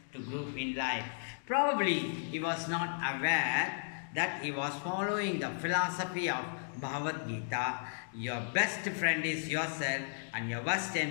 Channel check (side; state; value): right; silent; digital silence